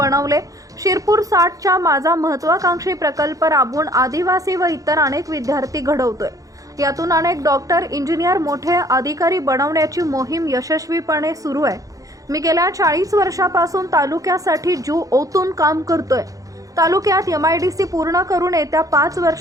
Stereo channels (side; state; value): left; late; 0.17 ms